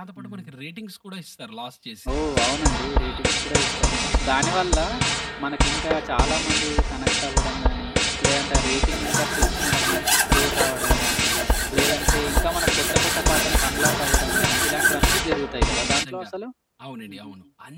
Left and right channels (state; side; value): identical; both; correlation 1.00